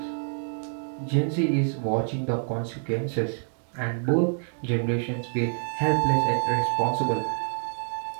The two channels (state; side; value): silent; left; 60 dB below the other